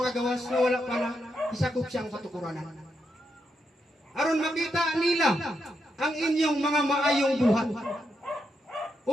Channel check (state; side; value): normal; both; correlation 0.83